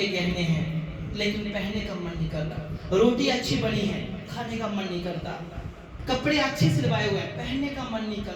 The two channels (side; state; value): both; identical; correlation 1.00